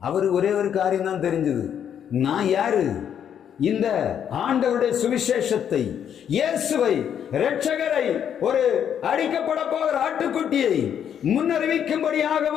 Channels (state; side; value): quieter; right; 8.9 dB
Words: அவர் ஒரே ஒரு காரியம் தான் தெரிஞ்சது, நான் யாரு? இந்த ஆண்டவருடைய சுவிசேஷத்தை, இயேசுவை, இரட்சகரை, ஒரு அடிக்கப்பட போகிற ஆட்டுக்குட்டியை முன்னறிவிக்கும்படியாக